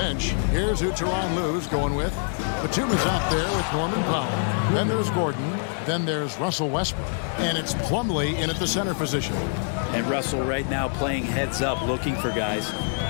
here's who Tyronn Lue's going with. Batum is out there with Norman Powell. Then there's Gordon. then there's Russell Westbrook. And it's Plumlee in at the center position. And Russell right now playing heads up, looking for guys.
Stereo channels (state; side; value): silent; right; 61 dB below the other